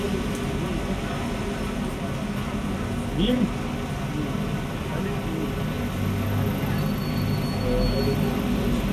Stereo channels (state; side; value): identical; both; correlation 1.00